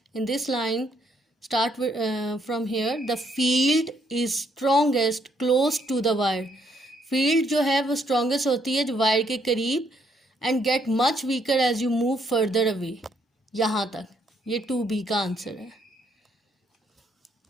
In this line start from here. The field is strongest close to the wire. Field जो है वो strongest होती है जो wire के करीब, and get much weaker as you move further away. यहाँ तक ये 2B का आंसर है.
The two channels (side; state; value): both; normal; correlation 0.71